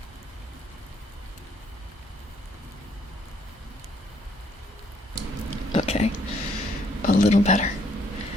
Okay, a little better.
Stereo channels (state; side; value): normal; both; correlation 0.67